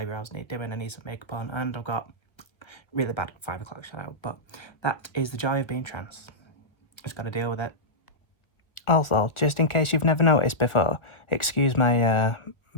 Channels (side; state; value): right; late; 1.2 ms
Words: need doing, I need some makeup on, and I've got really bad 5 o'clock shadow. But that is the joy of being trans. Just got to deal with it. Also, just in case you've never noticed before, excuse my